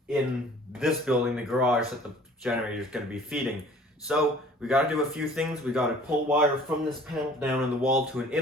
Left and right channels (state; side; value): normal; both; correlation 0.50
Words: in this building, the garage that the generator is going to be feeding. So we got to do a few things. We got to pull wire from this panel down in the wall to an